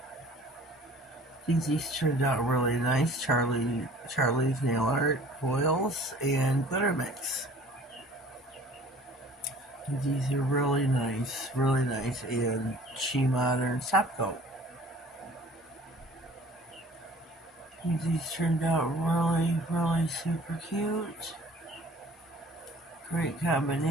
These turned out really nice. Charlie's Nail Art foils and glitter mix. These are really nice, and She Modern top coat. These turned out really super cute. Great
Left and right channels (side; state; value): both; normal; correlation 0.49